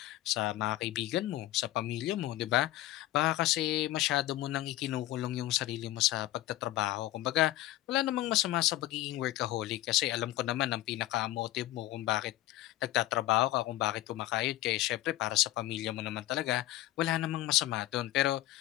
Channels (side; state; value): right; quieter; 15.7 dB